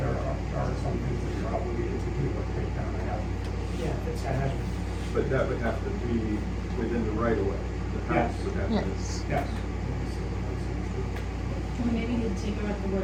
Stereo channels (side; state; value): both; identical; correlation 1.00